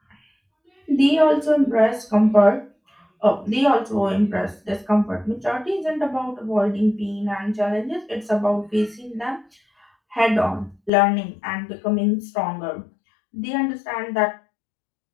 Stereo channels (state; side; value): drops out; right; at 10.9 s